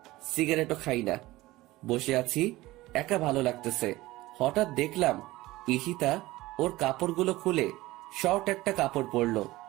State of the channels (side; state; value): left; quieter; 18.5 dB